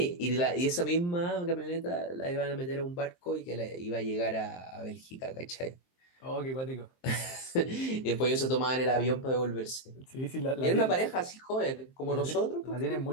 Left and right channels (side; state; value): right; late; 23 ms